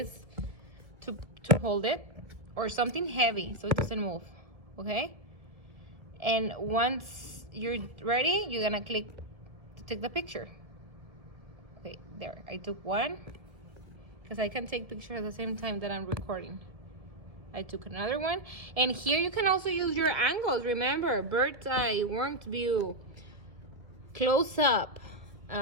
to hold it, or something heavy so it doesn't move. Okay? And once you're ready, you're gonna click to take the picture. Okay, there. I took one because I can take pictures at the same time that I'm recording. I took another one. And here you can also use your angles. Remember, bird's eye, warmed view, close up.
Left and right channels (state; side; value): late; left; 1.7 ms